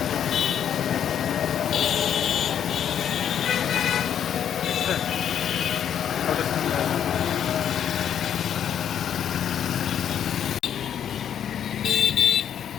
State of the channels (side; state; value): right; quieter; 9.2 dB